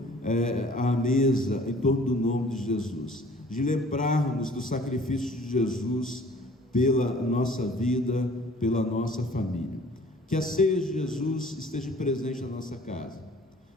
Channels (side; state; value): both; normal; correlation 0.52